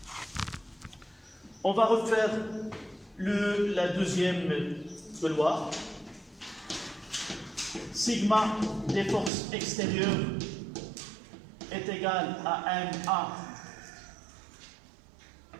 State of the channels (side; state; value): left; drops out; at 9.3 s